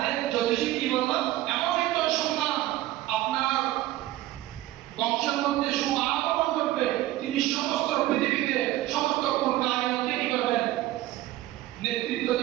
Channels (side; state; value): left; quieter; 15.7 dB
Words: জ্যোতিষী কি বলল, এমন একটা সন্তান আপনার বংশের মধ্যে সুআগমন করবে, তিনি সমস্ত পৃথিবীতে সমস্ত কায়নাতকে কি করবেন, নেতৃত্ব